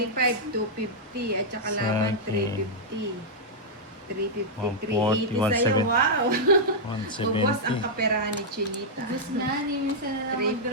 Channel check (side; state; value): both; normal; correlation -0.06